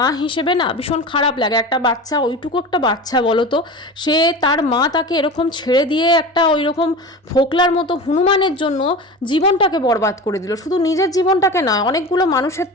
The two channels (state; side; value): normal; both; correlation 0.31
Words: হিসেবে না ভীষণ খারাপ লাগে। একটা বাচ্চা, ওইটুকু একটা বাচ্চা বলো তো, সে তার মা তাকে এরকম ছেড়ে দিয়ে একটা ওই রকম ফোকলার মতো হনুমানের জন্য জীবনটাকে বরবাদ করে দিল। শুধু নিজের জীবনটাকে নয়, অনেকগুলো মানুষের